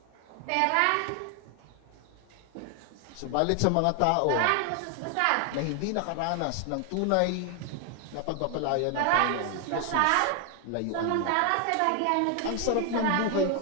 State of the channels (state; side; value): different; both; correlation 0.00